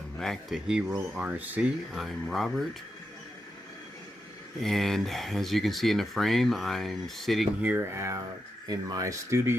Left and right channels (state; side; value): normal; both; correlation 0.87